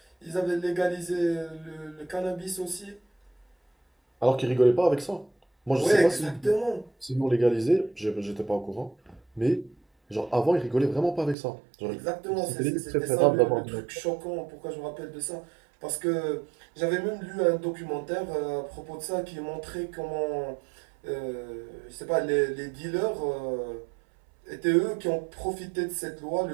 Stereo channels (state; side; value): drops out; left; at 11.4 s